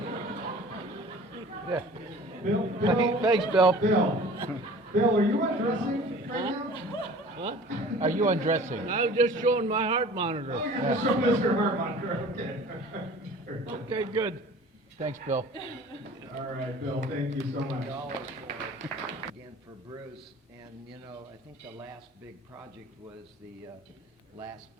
Yeah. Bill, Thanks, Bill. Bill, are you undressing right now? Huh? Are you undressing? I'm just showing my heart monitor. Oh, you're just showing us your heart monitor, okay. Okay, good. Thanks, Bill. All right, Bill, thank you so much. Again for Bruce, and you know, I think the last big project was the last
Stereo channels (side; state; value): both; normal; correlation 0.45